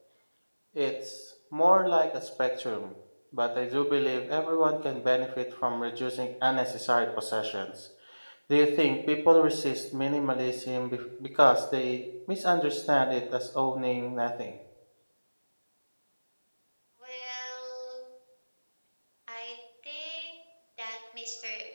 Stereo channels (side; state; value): both; inverted; correlation -1.00